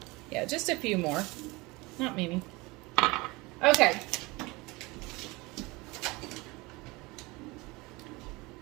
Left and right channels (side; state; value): left; quieter; 23.6 dB